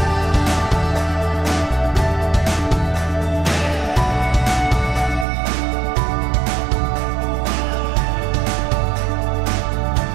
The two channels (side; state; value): left; drops out; at 5.2 s